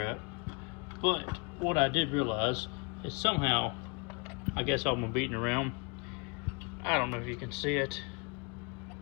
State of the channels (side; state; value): right; quieter; 31.4 dB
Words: But what I did realize is somehow, I guess I'm beating around. I don't know if you can see it.